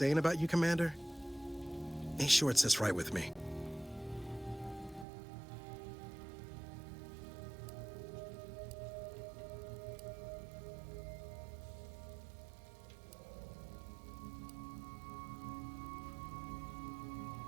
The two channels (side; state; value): left; drops out; at 5.1 s